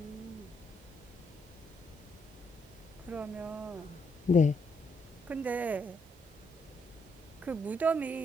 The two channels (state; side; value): normal; both; correlation 0.75